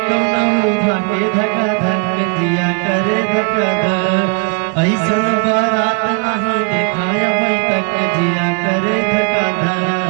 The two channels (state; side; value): quieter; left; 34.2 dB